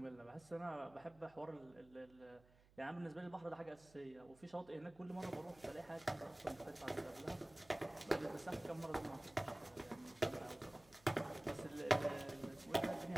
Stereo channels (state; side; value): noise; right; hum, 26 dB below the sound